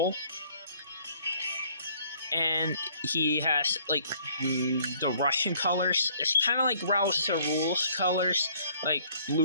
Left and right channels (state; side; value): inverted; both; correlation -0.60